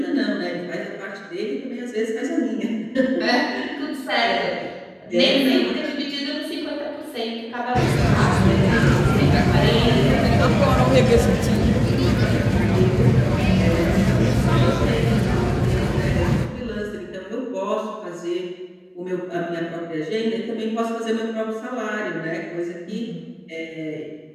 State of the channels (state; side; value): identical; both; correlation 1.00